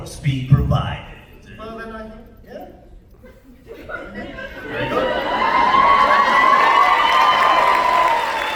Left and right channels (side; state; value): both; identical; correlation 1.00